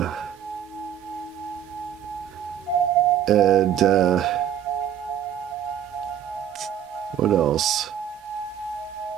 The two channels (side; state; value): left; quieter; 9.8 dB